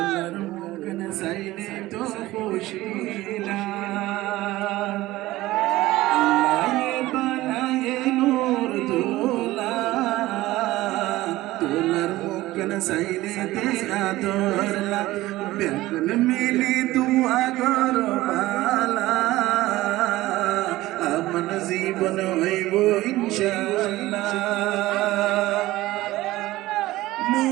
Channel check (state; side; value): quieter; left; 17.4 dB